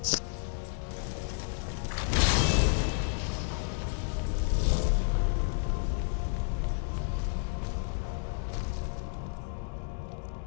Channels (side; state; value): right; silent; 57 dB below the other